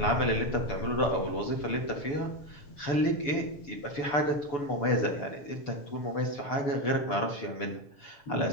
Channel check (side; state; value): right; late; 7.0 ms